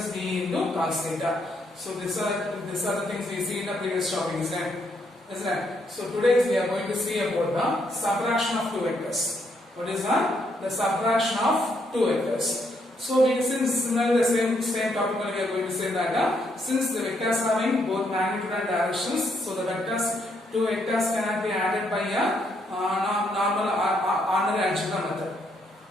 B into cos theta. So these are the things we see in the previous topic, isn't it? So today we are going to see about the subtraction of two vectors. What is that? The subtraction of two vectors. So since similarly the same topic we are going to say that since the vectors having both magnitude and directions, so the two vectors cannot be added by a normal ordinary algebra method.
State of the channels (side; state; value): both; normal; correlation 0.74